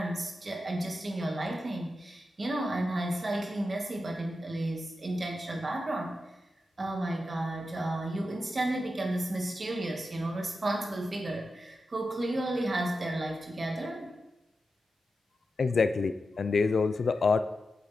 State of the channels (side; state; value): both; normal; correlation 0.90